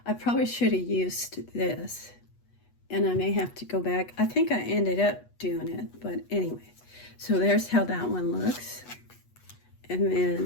I probably should have used this, and I may have to go back. I think I ended up doing it, but anyway. So there's how that one looks. And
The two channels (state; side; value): late; right; 8.3 ms